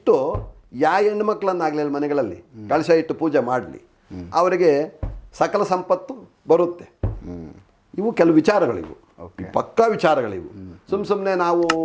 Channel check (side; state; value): both; identical; correlation 1.00